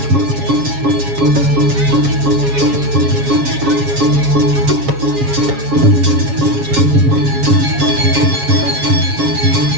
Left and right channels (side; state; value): left; late; 7.3 ms